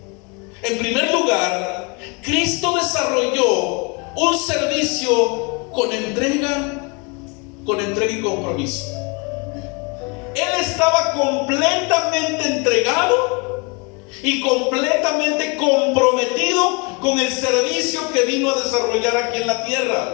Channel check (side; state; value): right; quieter; 31.3 dB